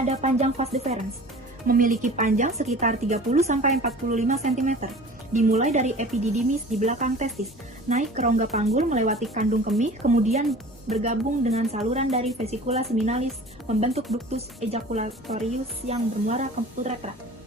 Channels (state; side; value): normal; both; correlation 0.42